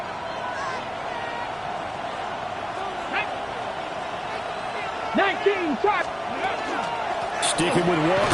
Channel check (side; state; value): both; identical; correlation 1.00